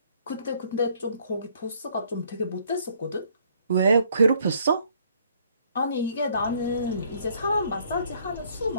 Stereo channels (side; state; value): both; inverted; correlation -0.64